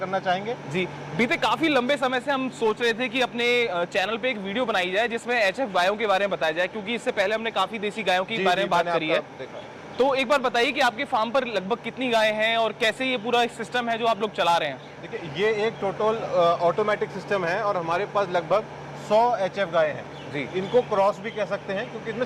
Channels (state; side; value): identical; both; correlation 1.00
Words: चाहेंगे। जी, बीते काफी लंबे समय से हम सोच रहे थे कि अपने चैनल पे एक वीडियो बनाई जाए जिसमें HF गायों के बारे में बताया जाए, क्योंकि इससे पहले हमने काफी देसी गायों के बारे में बात करी है। तो एक बार बताइए कि आपके फार्म पर लगभग कितनी गायें हैं और कैसे ये पूरा सिस्टम है जो आप लोग चला रहे हैं। देखिए, ये एक टोटल ऑटोमेटिक सिस्टम है और हमारे पास लगभग 100 HF गायें हैं जी। इनको क्रॉस भी कह सकते हैं क्योंकि इसमें